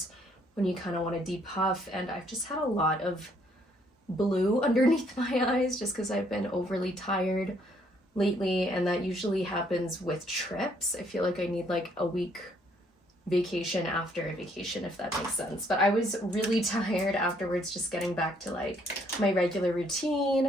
when you kind of want to depuff. And I've just had a lot of blue underneath my eyes just because I've been overly tired lately, and that usually happens with trips. I feel like I need like a week vacation after a vacation, if that makes sense. But I was really tired afterwards, just getting back to like my regular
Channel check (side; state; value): both; normal; correlation 0.67